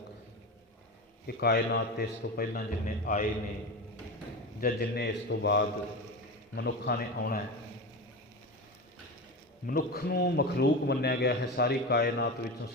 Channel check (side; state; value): both; normal; correlation 0.23